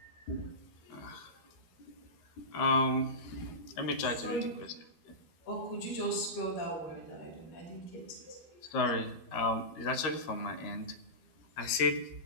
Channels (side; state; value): right; late; 13 ms